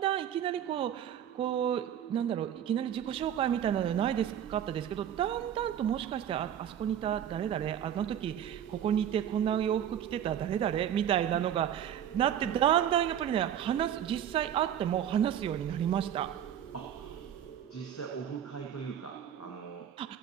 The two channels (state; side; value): quieter; left; 9.9 dB